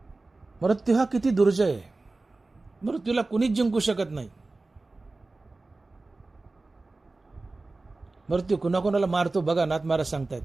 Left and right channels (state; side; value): quieter; left; 3.3 dB